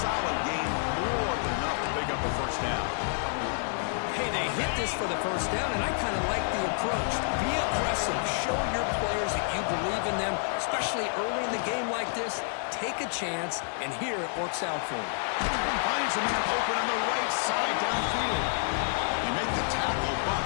gain, more than enough to pick up a 1st down. Hey, they hit this for the 1st down, and I kind of like the approach. Be aggressive. Show your players that you believe in them, especially early in the game like this. Take a chance, and here it works out for him. Finds a man open on the right side downfield. They make the tackle, but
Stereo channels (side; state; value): right; silent; digital silence